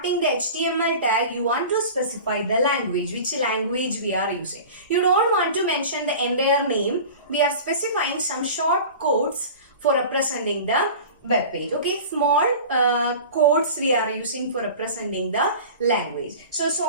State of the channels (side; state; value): both; inverted; correlation -0.37